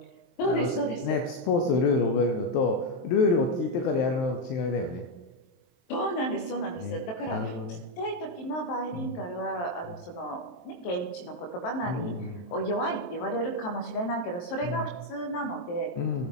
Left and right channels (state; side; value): late; right; 23 ms